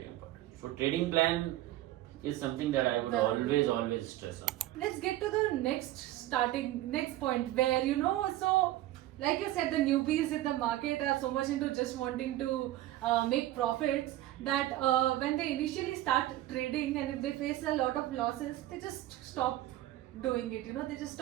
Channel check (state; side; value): quieter; left; 15.2 dB